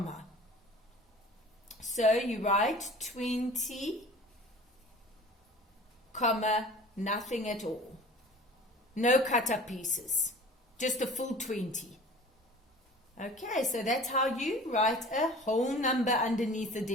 So you write 20, comma, nothing at all. No cut up pieces. Just a full 20. Okay, so that's how you write a whole number underneath the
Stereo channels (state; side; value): normal; both; correlation 0.43